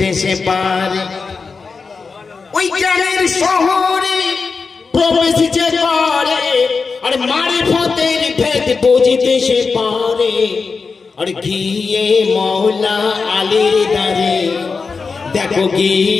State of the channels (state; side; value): quieter; right; 4.8 dB